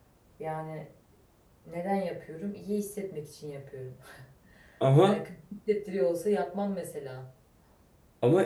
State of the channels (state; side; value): identical; both; correlation 1.00